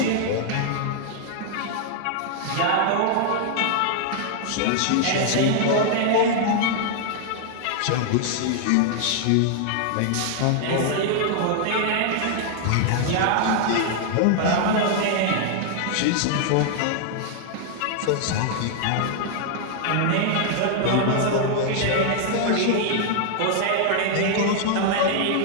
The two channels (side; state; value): both; different; correlation 0.00